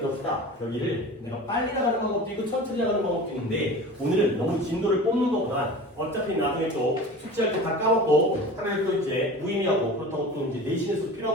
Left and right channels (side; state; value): both; normal; correlation 0.36